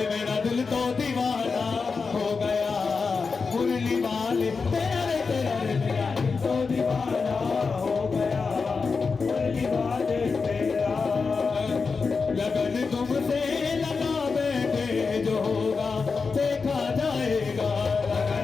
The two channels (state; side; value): quieter; right; 4.8 dB